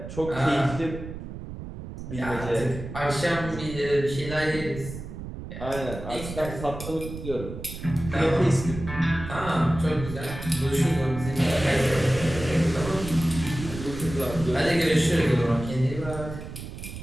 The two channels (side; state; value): right; noise; rumble, 10 dB below the sound